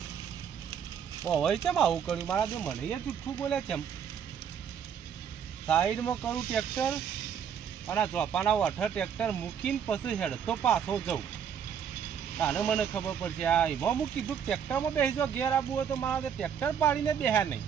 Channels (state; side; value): quieter; left; 8.0 dB